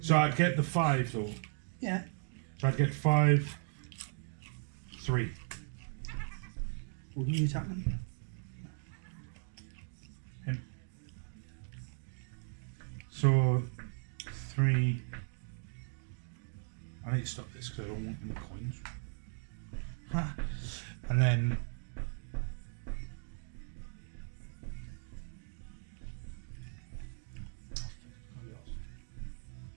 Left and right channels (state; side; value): silent; left; 53 dB below the other